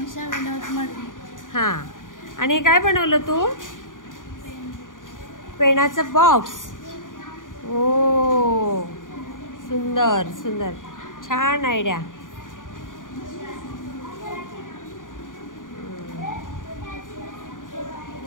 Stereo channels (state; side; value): late; right; 0.88 ms